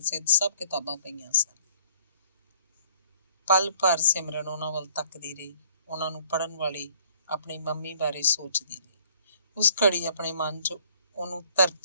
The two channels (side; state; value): both; inverted; correlation -0.59